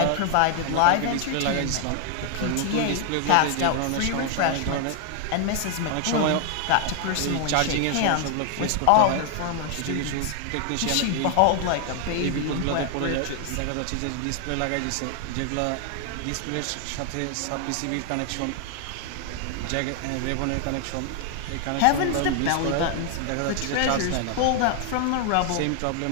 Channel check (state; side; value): different; both; correlation 0.00